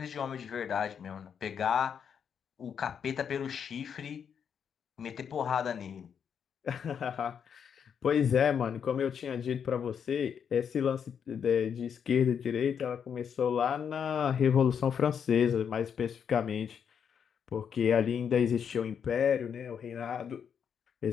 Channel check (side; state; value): right; quieter; 7.5 dB